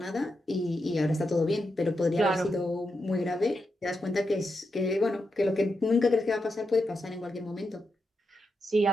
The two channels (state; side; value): normal; both; correlation 0.86